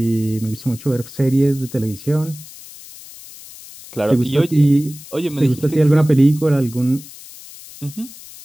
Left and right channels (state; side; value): noise; left; hiss, 18 dB below the sound